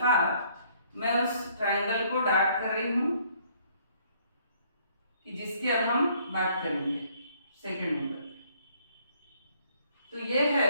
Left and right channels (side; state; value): both; inverted; correlation -0.64